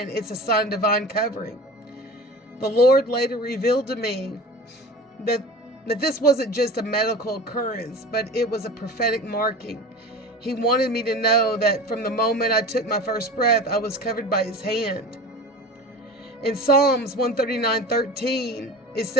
it's a sign of divine covering. The Lord later revealed to me that this wasn't just a medical occurrence, but it was a prophetic marking. He wanted me to know that from the moment I took my first breath, I was covered by his hand. In Psalms 139:13, it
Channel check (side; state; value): both; normal; correlation 0.35